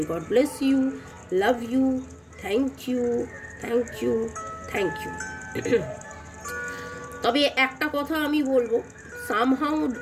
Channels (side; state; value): both; identical; correlation 1.00